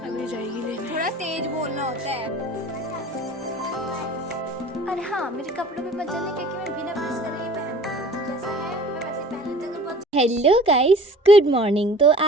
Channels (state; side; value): normal; both; correlation 0.46